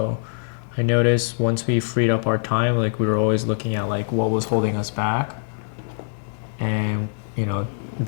I noticed once we freed up our time, like we were always looking at like what was holding us back. And, you know,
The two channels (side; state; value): right; silent; 59 dB below the other